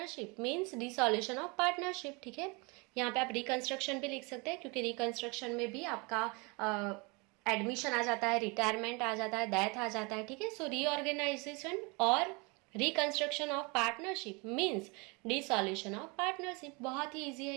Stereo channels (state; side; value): quieter; left; 28.9 dB